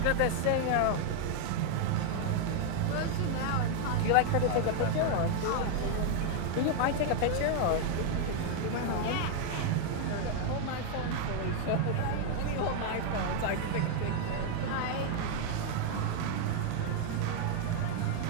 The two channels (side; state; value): both; different; correlation 0.00